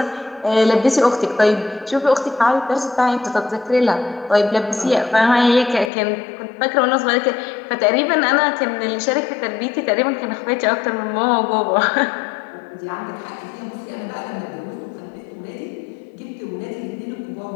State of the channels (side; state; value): right; drops out; at 5.9 s